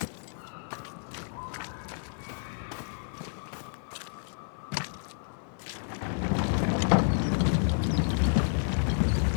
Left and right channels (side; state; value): right; silent; 56 dB below the other